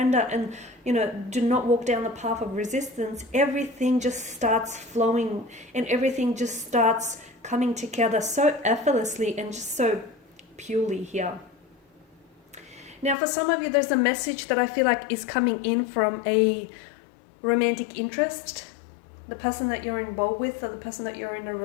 and, do not walk down the path of resistance, everything just starts flowing and everything just starts coming together so effortlessly and just so purely here. Now, for some of you, there's a message that I feel like is coming in from a romantic interest, the person that you're involved with, or the person that you're in a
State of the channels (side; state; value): right; drops out; at 13.2 s